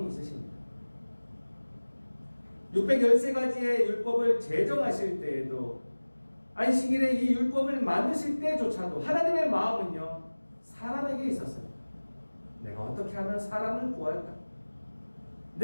있으십니다. 613가지의 율법을 제정하실 때에도 안식일에 이 율법을 만드실 때조차도 하나님의 마음은요 사람에게 있었습니다. 내가 어떻게 하면 사람을 구할까?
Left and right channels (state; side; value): inverted; both; correlation -1.00